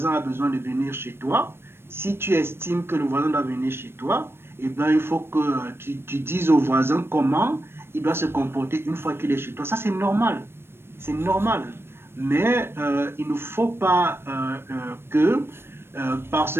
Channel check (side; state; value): left; late; 0.12 ms